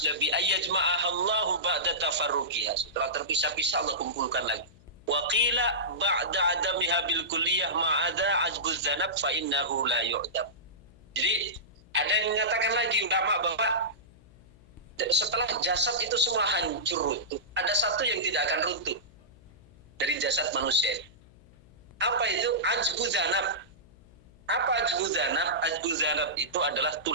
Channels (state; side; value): noise; left; hum, 25 dB below the sound